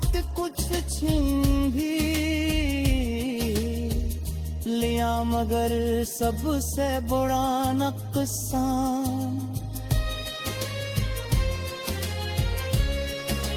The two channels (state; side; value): identical; both; correlation 1.00